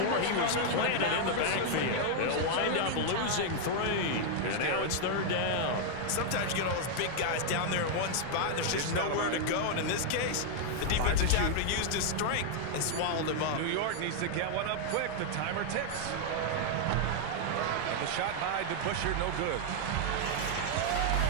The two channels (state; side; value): different; both; correlation 0.00